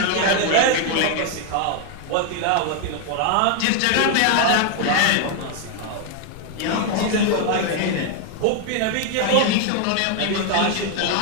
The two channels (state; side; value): different; both; correlation 0.00